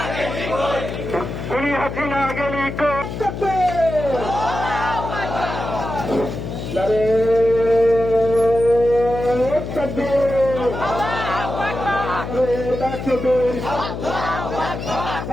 খুনি হাসিনা গেলি কই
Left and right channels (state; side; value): noise; left; hum, 7 dB below the sound